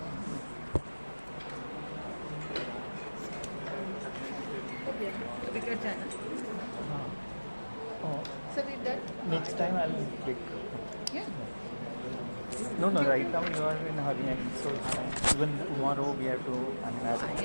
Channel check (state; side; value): inverted; both; correlation -1.00